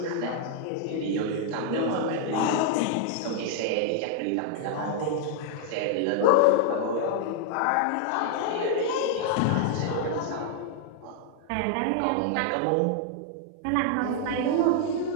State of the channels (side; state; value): both; different; correlation 0.00